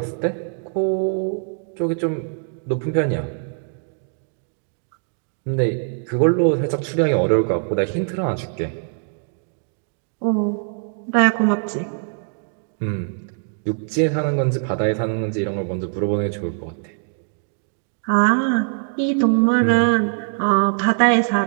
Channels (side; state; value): left; silent; digital silence